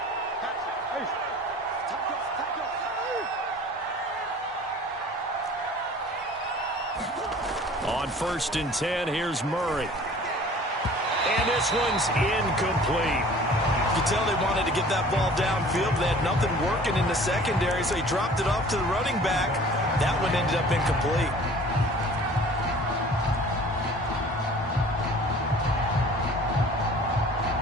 On 1st and 10, here's Murray. And this one's incomplete. You can tell they wanted to get that ball downfield. They had nothing working in the secondary, so he dropped it off to the running back. That one ended up incomplete.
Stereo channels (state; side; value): normal; both; correlation 0.48